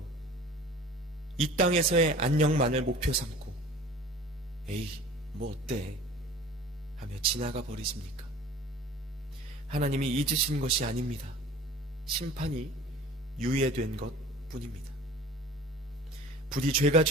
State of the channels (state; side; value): normal; both; correlation 0.44